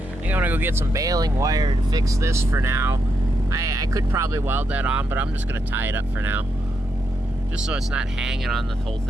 think I'm gonna go get some baling wire to fix this for now. I could probably weld that on, but I'm just gonna tie it up for now. Just so it's not hanging on the whole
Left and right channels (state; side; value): normal; both; correlation 0.82